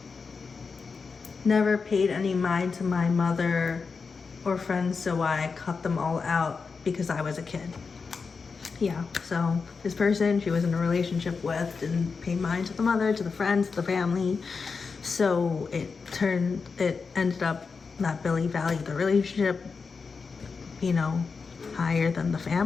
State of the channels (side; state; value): right; quieter; 5.0 dB